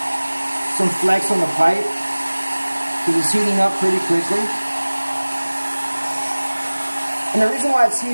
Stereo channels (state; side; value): inverted; both; correlation -1.00